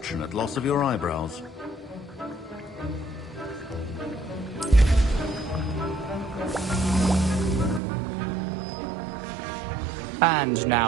loss of your eyebrows. And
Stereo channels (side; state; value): left; drops out; at 7.8 s